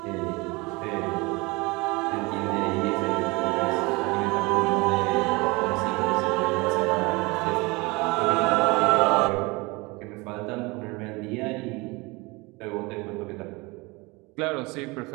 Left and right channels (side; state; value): left; quieter; 25.1 dB